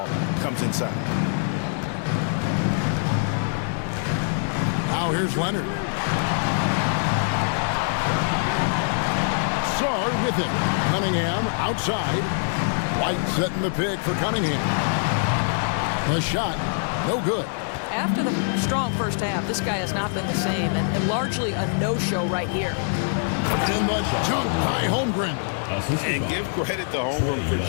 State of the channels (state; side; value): silent; right; 62 dB below the other